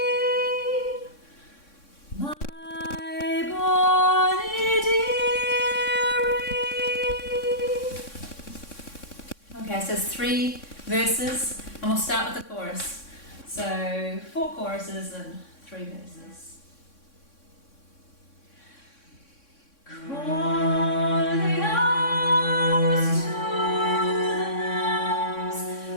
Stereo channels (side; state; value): right; late; 3.6 ms